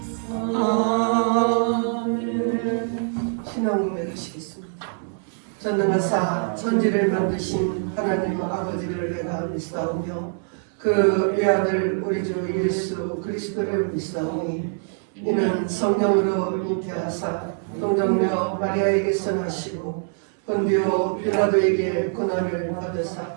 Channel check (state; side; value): silent; left; 59 dB below the other